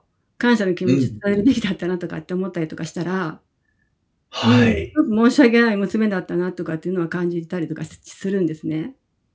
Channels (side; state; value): both; identical; correlation 1.00